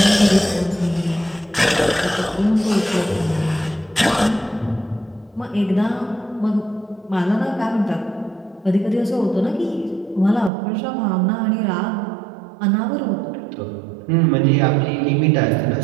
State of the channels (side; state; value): left; drops out; at 10.5 s